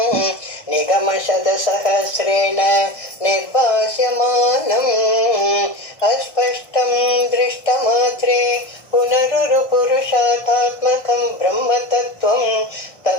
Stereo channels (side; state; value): right; late; 1.5 ms